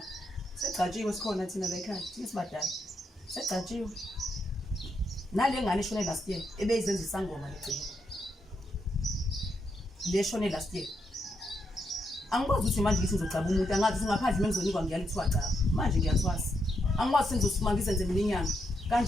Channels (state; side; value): normal; both; correlation 0.80